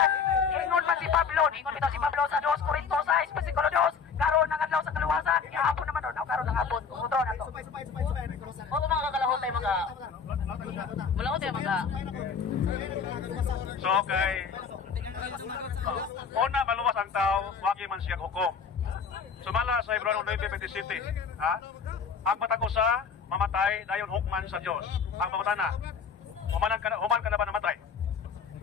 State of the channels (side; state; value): right; quieter; 6.0 dB